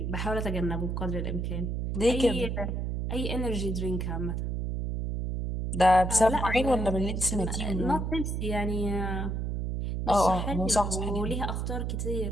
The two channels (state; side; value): noise; right; hum, 2 dB below the sound